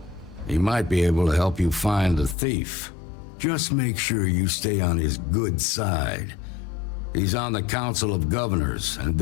He might be able to help you find the thief. Just make sure you stay on his good side. He's on the Council of Governors, and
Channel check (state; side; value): drops out; right; at 2.4 s